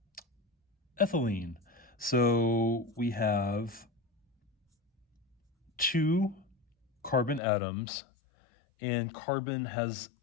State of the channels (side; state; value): right; drops out; at 7.4 s